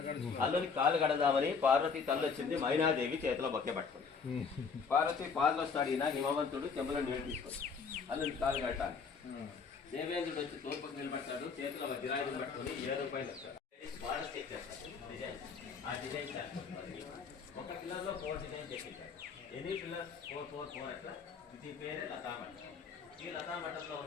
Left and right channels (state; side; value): quieter; right; 5.5 dB